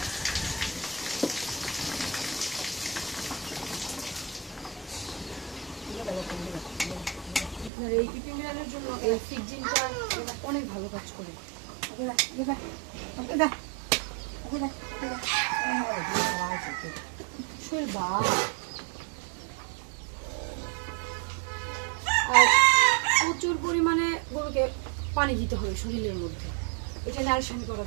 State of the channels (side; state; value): left; drops out; at 7.7 s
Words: আপনার এই ইপিভিরালের জন্য এই ফিক্সিনটা অনেক ভালো কাজ করে। আর প্রচুর পরিমাণে গরুকে পানি দিতে হবে শরীরের মধ্যে, এটা নারিশন করা